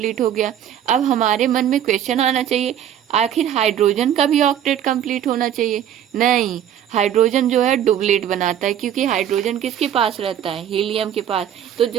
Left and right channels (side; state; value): left; quieter; 10.2 dB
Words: हो गया। अब हमारे मन में क्वेश्चन आना चाहिए, आखिर हाइड्रोजन का भी ऑक्टेट कंप्लीट होना चाहिए। नहीं, हाइड्रोजन जो है डुप्लेट बनाता है, क्योंकि हाइड्रोजन किसके पास रहता है, हीलियम के पास। तो